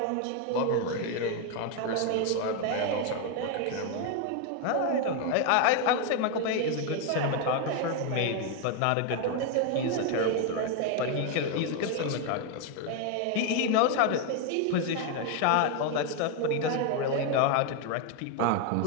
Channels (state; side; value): different; both; correlation 0.01